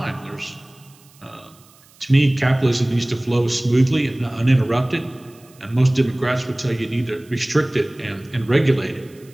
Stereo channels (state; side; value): noise; right; hiss, 28 dB below the sound